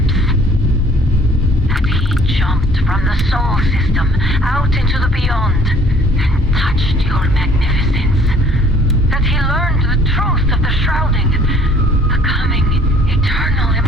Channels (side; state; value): both; normal; correlation 0.56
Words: That he jumped from the soul system out into the beyond and touched your magnificence. That he learned the truth of the shrouding, the coming eternal